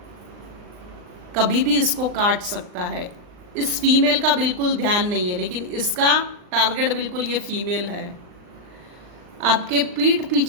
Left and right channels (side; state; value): left; late; 39 ms